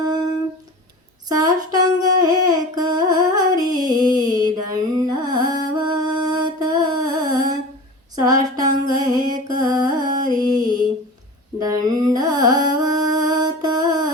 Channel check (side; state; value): both; normal; correlation 0.35